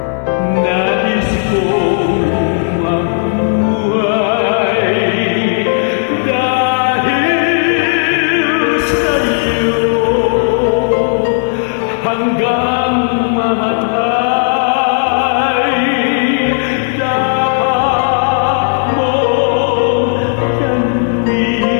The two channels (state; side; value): silent; right; digital silence